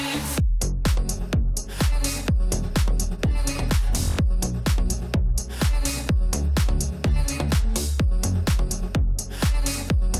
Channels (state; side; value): identical; both; correlation 1.00